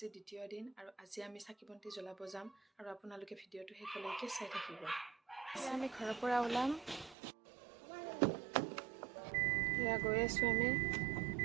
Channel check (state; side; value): drops out; left; at 7.2 s